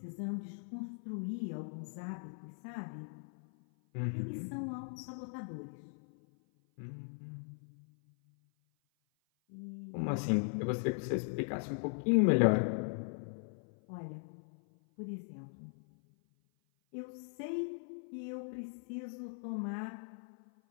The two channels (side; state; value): right; silent; 52 dB below the other